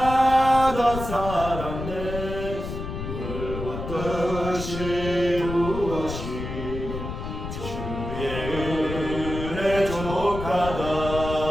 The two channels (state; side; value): noise; left; rumble, 7 dB below the sound